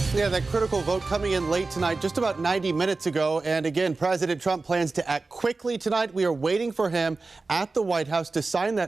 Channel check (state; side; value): quieter; left; 3.7 dB